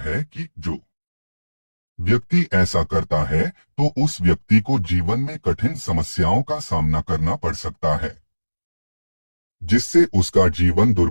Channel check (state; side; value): inverted; both; correlation -1.00